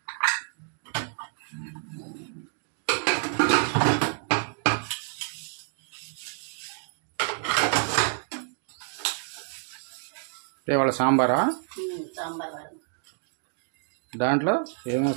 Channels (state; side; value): silent; left; 57 dB below the other